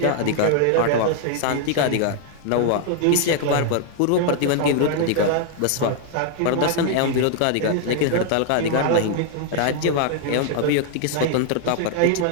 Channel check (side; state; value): both; different; correlation 0.00